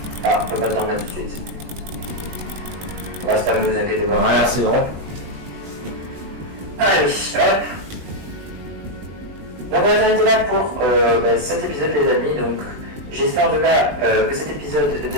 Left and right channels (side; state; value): left; late; 20 ms